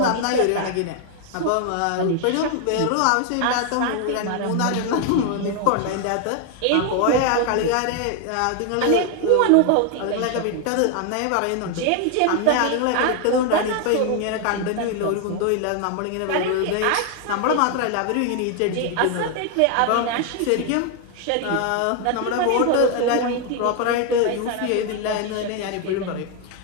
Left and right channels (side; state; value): both; different; correlation 0.01